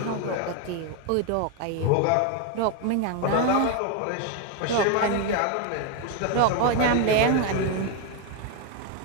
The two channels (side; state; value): both; different; correlation 0.01